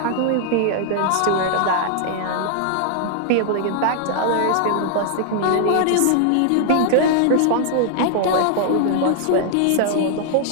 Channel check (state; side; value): different; both; correlation 0.00